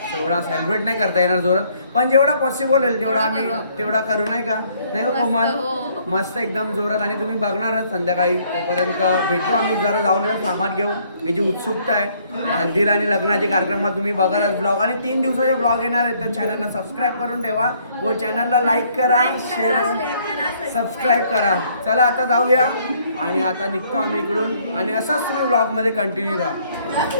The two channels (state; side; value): inverted; both; correlation -0.65